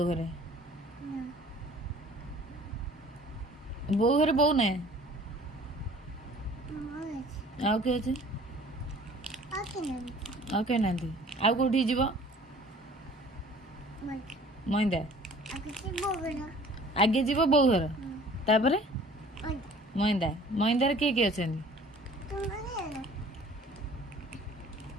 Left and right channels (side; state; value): both; normal; correlation 0.50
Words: घरे बो घरे बो ना आ किए आ किए ना आ कौटी जीव मईदा आगे जीव बो घर तापर मईदा मईदार किए किए अच्छा